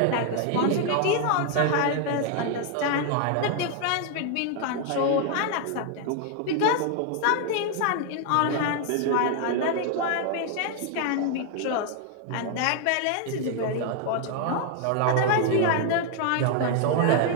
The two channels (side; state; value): both; different; correlation 0.00